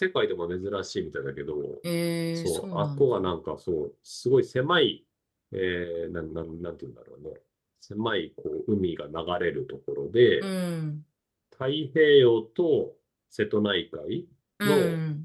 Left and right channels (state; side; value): identical; both; correlation 1.00